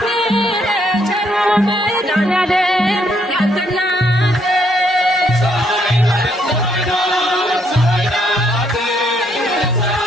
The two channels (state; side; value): normal; both; correlation 0.72